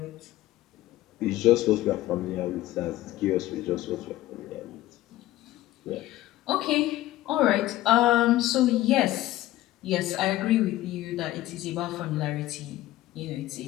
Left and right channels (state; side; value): quieter; right; 15.7 dB